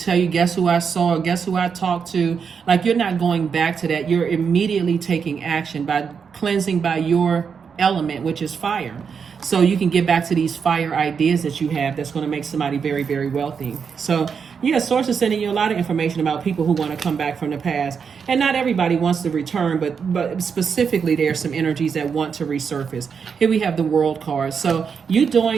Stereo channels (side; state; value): left; quieter; 6.3 dB